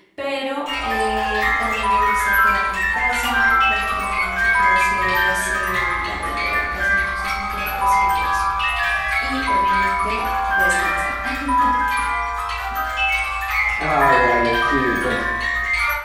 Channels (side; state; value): both; identical; correlation 1.00